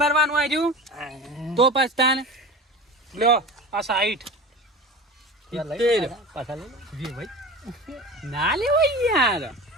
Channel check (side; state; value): both; normal; correlation 0.33